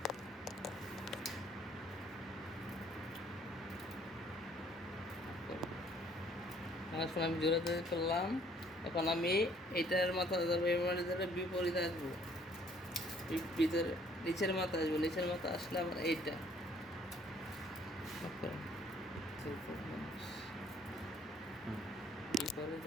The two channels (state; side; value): normal; both; correlation 0.61